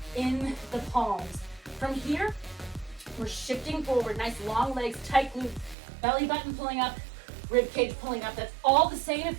in the palms. From here, we're shifting forward. Nice long legs, tight glute, belly button pulling up, rib cage pulling up. That's all the same if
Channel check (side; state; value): left; drops out; at 5.8 s